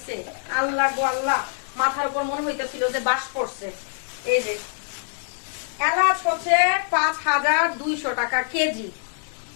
আল্লাহ গো আল্লাহ, মাথার উপর মনে হইতেছিল যে বাস পড়ছে। এই যে এলাচ হচ্ছে 5200 টাকা কেজি।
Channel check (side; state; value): right; silent; digital silence